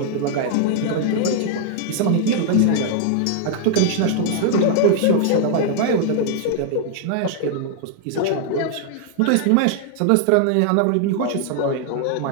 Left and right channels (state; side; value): different; both; correlation 0.00